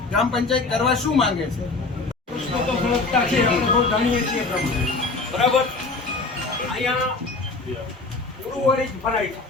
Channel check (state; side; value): quieter; right; 3.7 dB